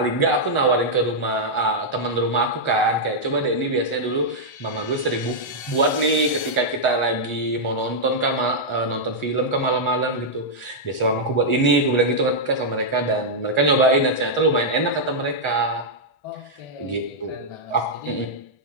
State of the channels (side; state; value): right; late; 1.4 ms